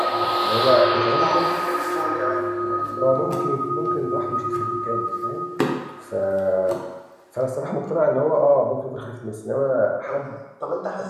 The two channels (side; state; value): both; identical; correlation 1.00